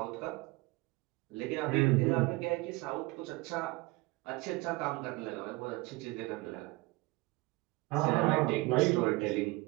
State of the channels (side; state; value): left; quieter; 22.3 dB